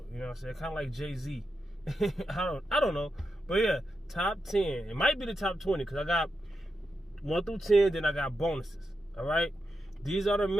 You know what I'm saying? Kind of like Jay-Z. I don't know, but yeah, top 10. It might be the top 20 because I got 1 through 10. Then I got bonuses. All right. These are the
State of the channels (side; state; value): both; normal; correlation 0.87